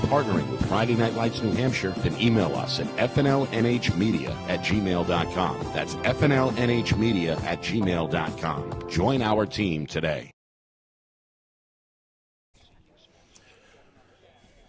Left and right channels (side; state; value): both; identical; correlation 1.00